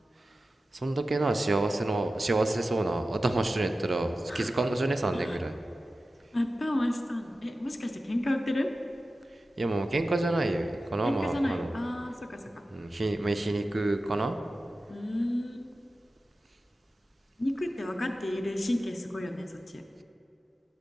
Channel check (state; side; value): normal; both; correlation 0.94